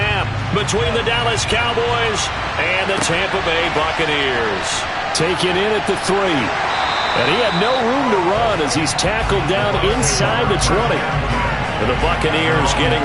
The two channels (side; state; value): both; identical; correlation 1.00